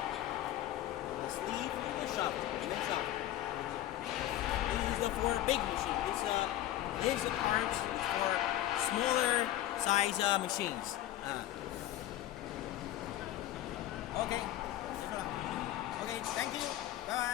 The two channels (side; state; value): right; quieter; 13.9 dB